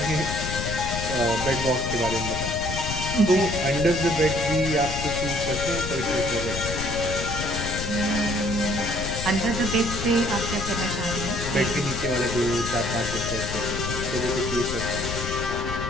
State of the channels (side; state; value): left; noise; rumble, 5 dB below the sound